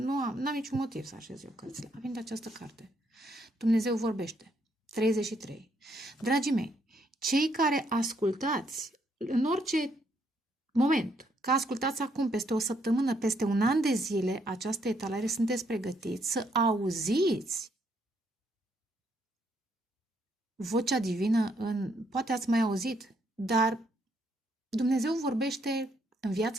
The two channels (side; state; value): both; normal; correlation 0.72